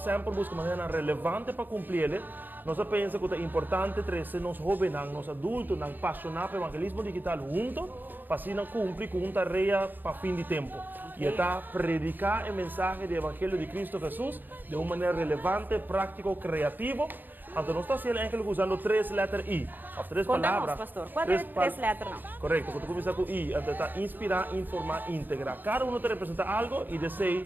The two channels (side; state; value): left; late; 0.089 ms